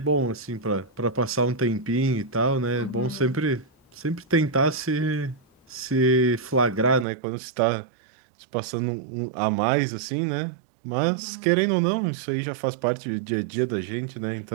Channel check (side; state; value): left; drops out; at 7.1 s